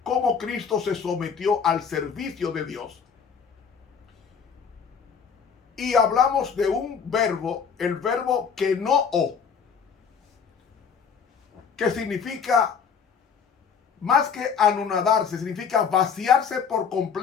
cómo Cristo se sometió al servicio de Dios. Y hablamos de un verbo, el verbo kenoō, que significa, más que anonadarse, significa vaciarse por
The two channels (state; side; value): quieter; right; 6.5 dB